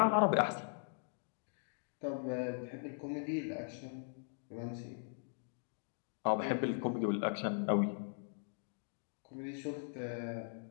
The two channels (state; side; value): silent; right; digital silence